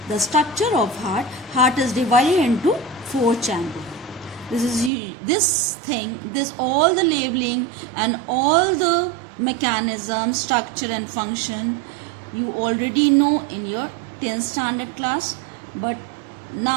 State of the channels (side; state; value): left; drops out; at 4.9 s